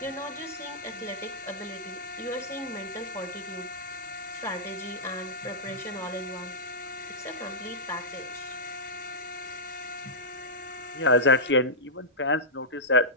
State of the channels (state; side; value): normal; both; correlation -0.12